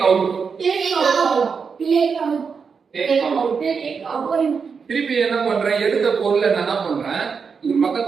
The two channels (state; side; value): quieter; left; 5.7 dB